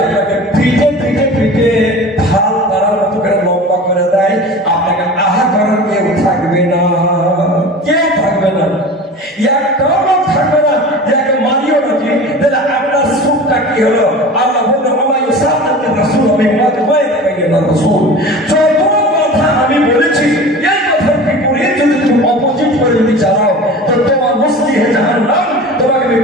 আপনাকে পিঠে পিঠে পিঠে ঢাল তারার মতো করে লম্বা করে দেয় আপনাকে আহা করার কেউ থাকবে না একটাও লোক থাকবে না যাকে মারিও নাকি তাহলে আপনার সুখটা কি হলো আল্লাহ বললেন আমায় সাহায্যের রাসূল আমি রাসূল যত কথা আমি বলেছি এই কথার বিপরীত যদি তুমি অপোজিট করে যদি চালাও তো তোমার মুস্তি হে জাহান্নাম তোমাকে আমি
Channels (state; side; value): normal; both; correlation 0.36